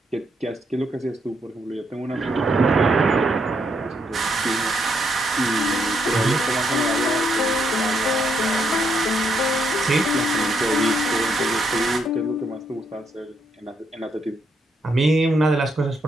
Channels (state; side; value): normal; both; correlation 0.76